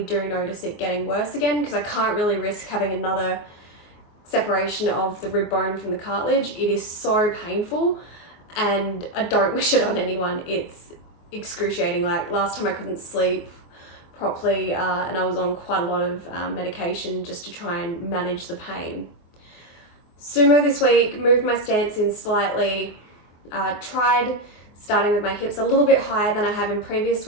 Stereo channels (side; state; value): right; late; 24 ms